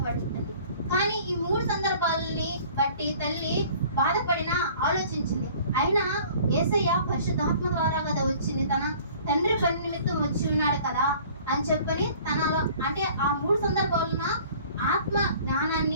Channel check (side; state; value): both; inverted; correlation -0.50